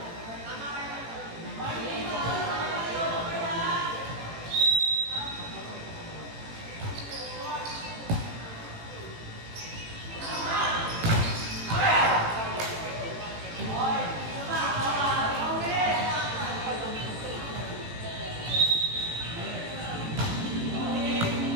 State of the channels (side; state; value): left; late; 18 ms